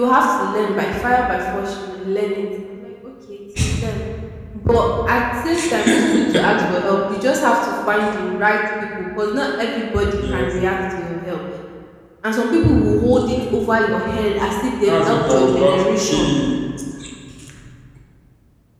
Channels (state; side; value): identical; both; correlation 1.00